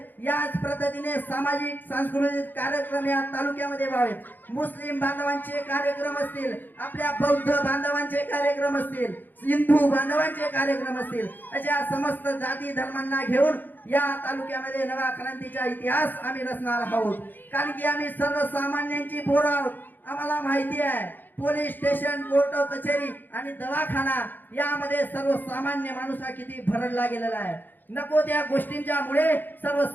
याच पद्धतीने सामाजिक सांस्कृतिक कार्यक्रम या तालुक्यामध्ये व्हावेत. मुस्लिम बांधवांचे कार्यक्रम असतील, आपल्या बौद्ध बांधवांचे कार्यक्रम असतील, हिंदू बांधवांचे कार्यक्रम असतील, अशा समस्त जाती धर्मांना घेऊन या तालुक्यामध्ये नवा क्रांतीचा इतिहास आम्ही रचणार आहोत. कारण की आम्ही सर्वसामान्यांची पोरं आहोत. आम्हाला माहिती आहे पोलीस स्टेशन, कोर्ट कचेरी आणि दवाखाना यामध्ये सर्वसामान्य माणूस हा किती भरडला गेलेला आहे. नको त्या गोष्टींच्या मुळे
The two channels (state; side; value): late; right; 0.088 ms